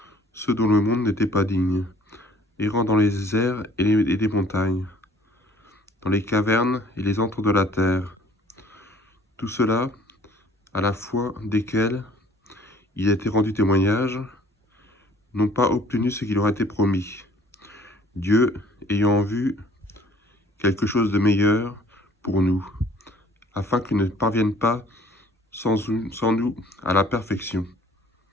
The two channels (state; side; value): normal; both; correlation 0.54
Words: ceux dont le monde n'était pas digne, errant dans les airs et les montagnes, dans les cavernes et les antres de la terre. Tout cela, à la fois desquels il a été rendu témoignage, n'ont pas obtenu ce qui leur a été promis. Dieu, ayant vu quelque chose de meilleur pour nous, afin qu'ils ne parviennent pas sans nous à la perfection.